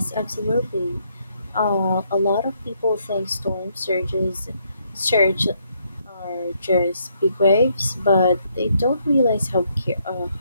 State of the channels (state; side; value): inverted; both; correlation -0.73